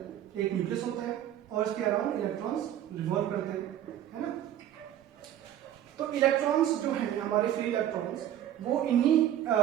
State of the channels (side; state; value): left; quieter; 11.4 dB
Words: एक न्यूक्लियस होता है और इसके अराउंड इलेक्ट्रॉन्स रिवॉल्व करते हैं, है ना. तो इलेक्ट्रॉन्स जो हैं हमारे फ्री इलेक्ट्रॉन्स वो इन्हीं